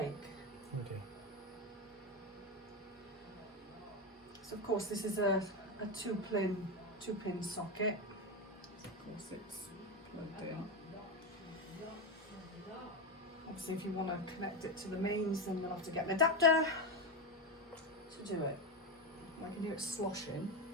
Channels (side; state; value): both; normal; correlation 0.12